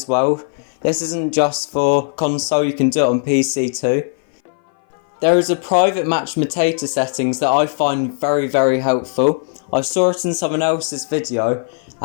well. This isn't just for console, you can do it on PC too. There is a private match Matata Settings that I find very, very helpful. I saw it in someone else's video,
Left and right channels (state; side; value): silent; right; 59 dB below the other